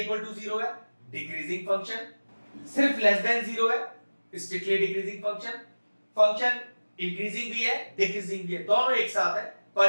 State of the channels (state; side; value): inverted; both; correlation -1.00